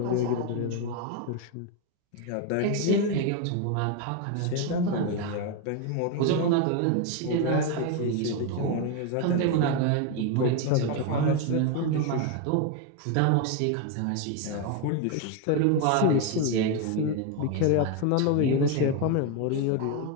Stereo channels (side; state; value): both; different; correlation 0.02